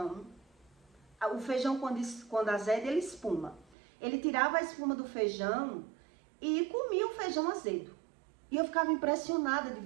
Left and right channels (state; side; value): drops out; left; at 3.8 s